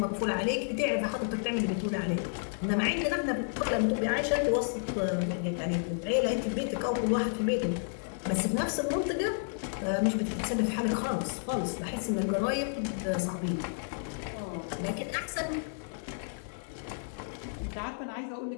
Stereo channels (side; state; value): right; silent; 57 dB below the other